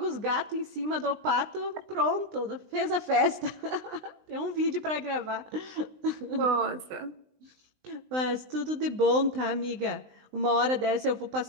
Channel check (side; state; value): left; late; 20 ms